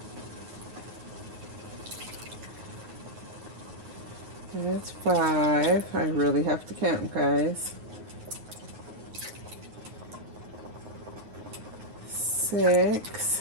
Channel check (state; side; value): late; left; 9.4 ms